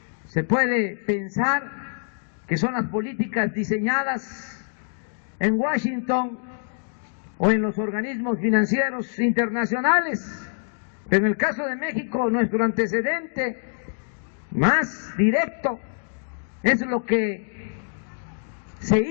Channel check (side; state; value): right; silent; digital silence